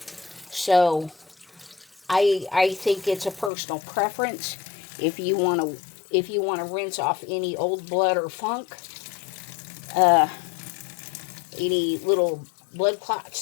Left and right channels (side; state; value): right; drops out; at 3.5 s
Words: So I think it's a personal preference. If you want to rinse off any old blood or funk, any little blood